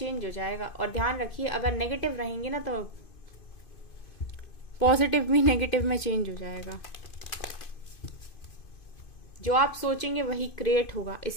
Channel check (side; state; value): right; late; 2.5 ms